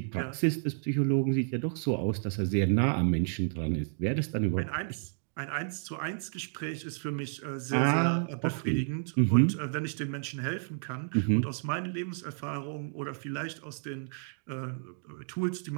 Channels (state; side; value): silent; left; digital silence